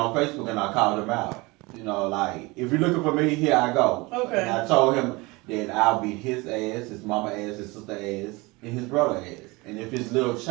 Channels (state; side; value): quieter; left; 24.0 dB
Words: Facebook, and I called him out. Like, if you're looking for me, here I go. Okay. And I told him that I'll beat his ass, his mama ass, his sister ass, and his brother ass. And if his little